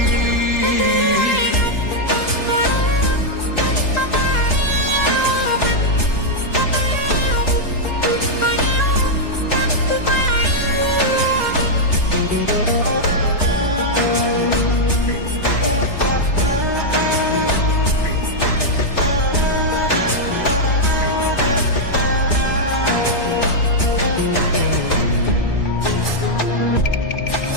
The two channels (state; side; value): late; right; 3.4 ms